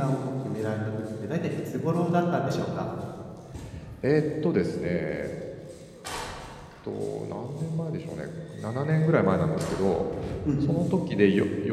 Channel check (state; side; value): identical; both; correlation 1.00